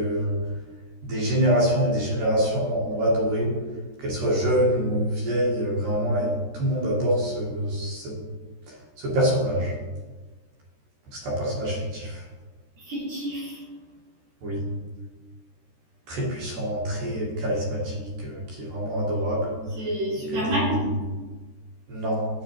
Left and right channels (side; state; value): left; late; 13 ms